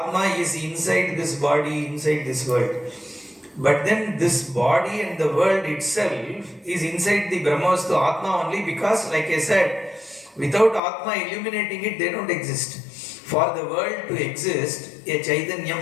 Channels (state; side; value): drops out; right; at 10.8 s